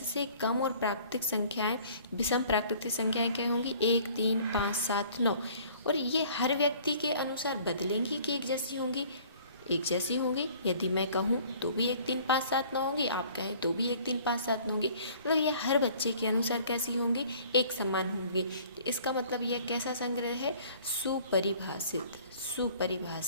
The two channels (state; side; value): inverted; both; correlation -0.53